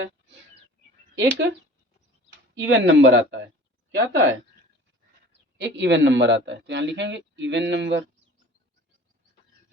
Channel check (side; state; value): both; normal; correlation 0.46